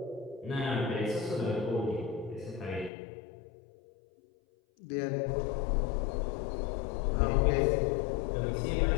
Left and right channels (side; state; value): right; drops out; at 2.9 s